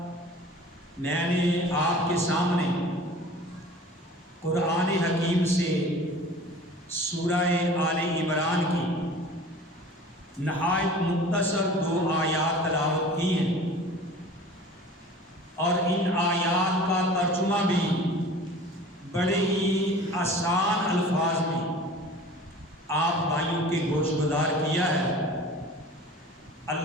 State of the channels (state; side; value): normal; both; correlation 0.43